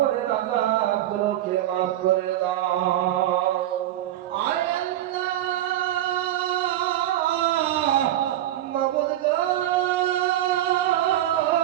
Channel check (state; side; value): quieter; left; 13.0 dB